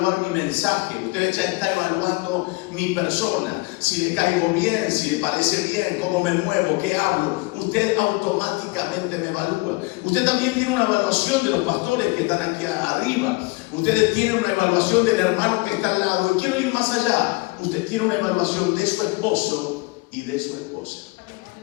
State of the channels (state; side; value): quieter; right; 25.2 dB